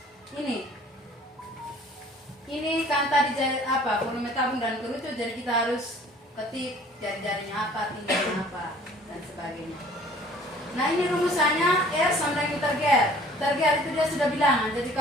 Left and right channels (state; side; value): normal; both; correlation 0.52